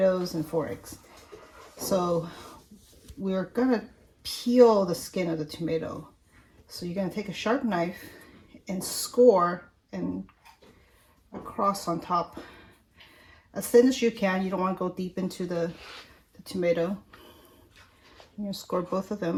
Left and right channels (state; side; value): identical; both; correlation 1.00